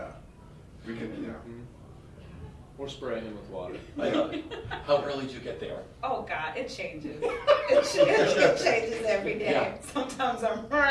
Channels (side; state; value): both; identical; correlation 1.00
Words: We can. Yeah. Mm-hmm. Or spray him with water. I love it. How early do you get there? Oh God, it changes. It changes every day. Yeah. Sometimes I'm